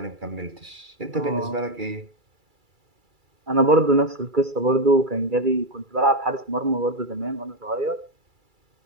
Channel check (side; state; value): left; late; 2.3 ms